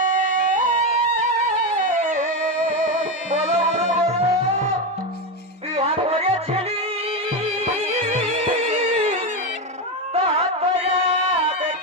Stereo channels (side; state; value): both; normal; correlation 0.12